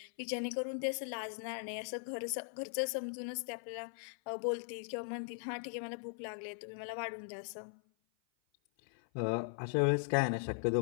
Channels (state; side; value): silent; right; 52 dB below the other